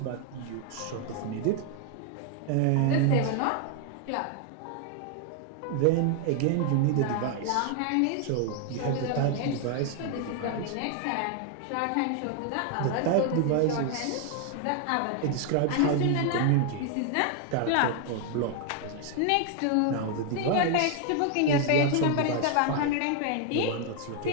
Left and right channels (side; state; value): both; different; correlation 0.00